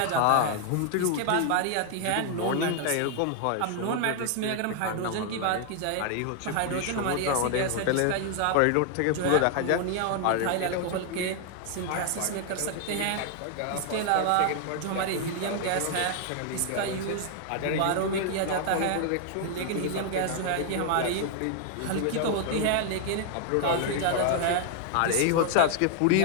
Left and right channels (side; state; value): both; different; correlation 0.00